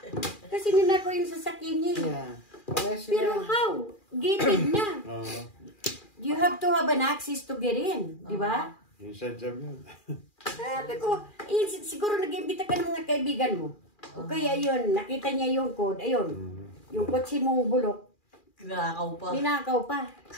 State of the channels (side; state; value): right; late; 2.4 ms